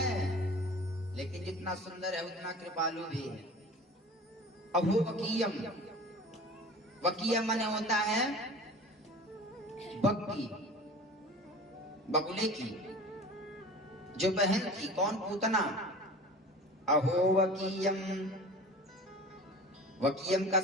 लेकिन जितना सुंदर है उतना कृपालु भी है। अभो वकीयम, वकीयम माने होता है बग्गी, बगुले की जो बहन थी। कौन? पूतना। अहो वकीयम, वकीयम का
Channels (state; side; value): normal; both; correlation 0.39